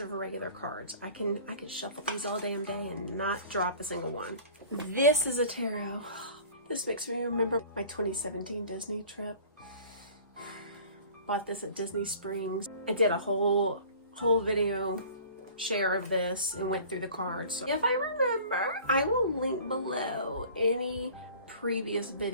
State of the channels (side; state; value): both; inverted; correlation -0.46